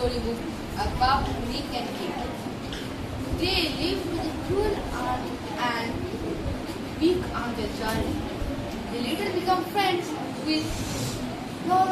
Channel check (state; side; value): identical; both; correlation 1.00